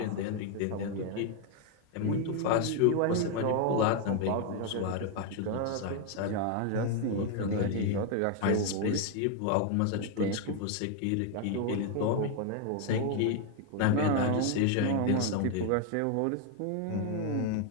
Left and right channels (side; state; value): both; different; correlation 0.01